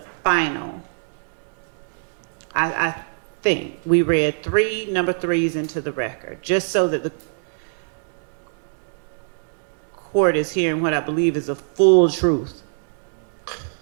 final. I think we read number threes into the record, just so that the court is hearing what I believe is a full truth.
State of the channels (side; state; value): left; silent; digital silence